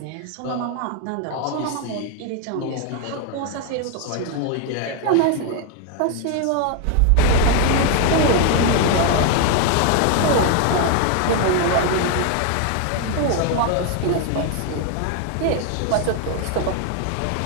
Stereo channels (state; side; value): different; both; correlation 0.01